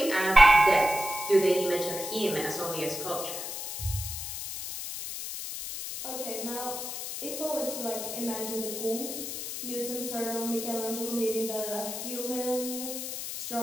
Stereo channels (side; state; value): left; noise; hiss, 6 dB below the sound